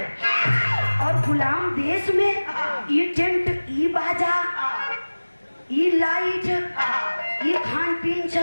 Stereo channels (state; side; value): inverted; both; correlation -1.00